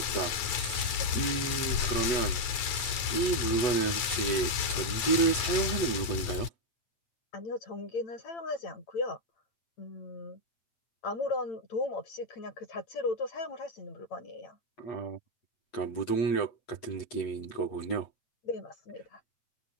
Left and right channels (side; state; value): right; late; 9.4 ms